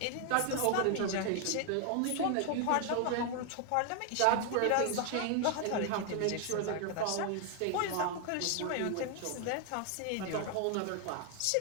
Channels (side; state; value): both; different; correlation 0.00